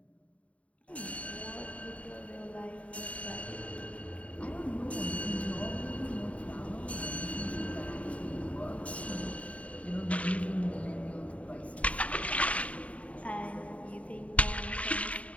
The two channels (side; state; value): right; late; 0.066 ms